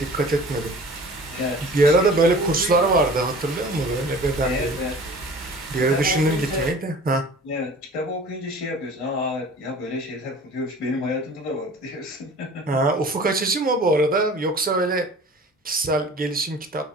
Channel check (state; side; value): normal; both; correlation 0.44